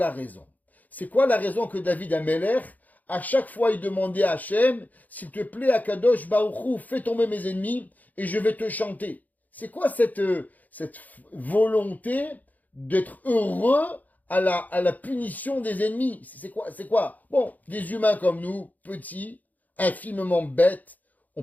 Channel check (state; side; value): late; right; 0.080 ms